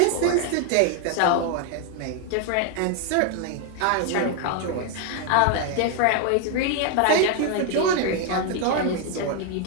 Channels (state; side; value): different; both; correlation 0.00